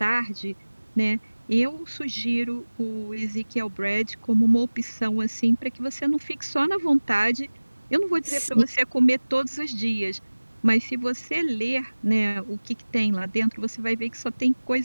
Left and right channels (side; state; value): both; inverted; correlation -1.00